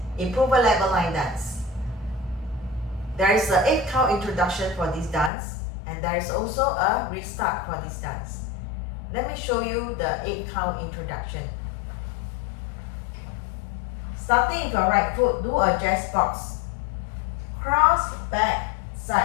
improver level line dance. There is an 8 count introduction for this dance, and there is also a restart for this dance. Let me show you the 8 count introduction. Starting with your right foot, do a jazz box. Cross, back,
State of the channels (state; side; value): drops out; right; at 5.3 s